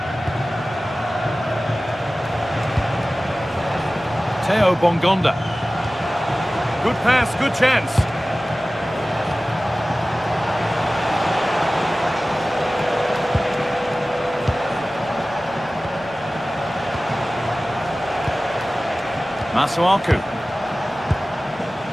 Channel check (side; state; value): both; normal; correlation 0.97